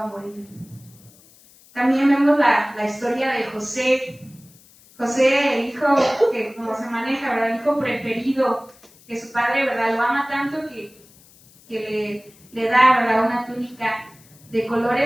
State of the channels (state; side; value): noise; left; hiss, 27 dB below the sound